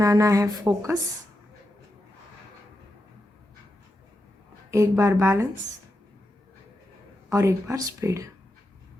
है फोकस, 1 बार बैलेंस और 1 बार स्पीड।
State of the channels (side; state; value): both; normal; correlation 0.87